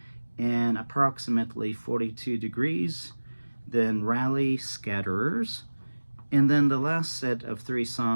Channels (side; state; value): both; inverted; correlation -1.00